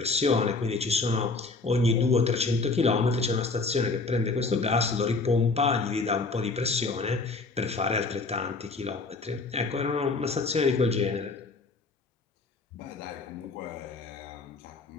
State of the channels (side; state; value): right; quieter; 3.8 dB